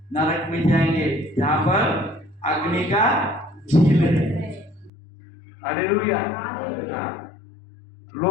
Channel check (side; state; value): right; drops out; at 4.9 s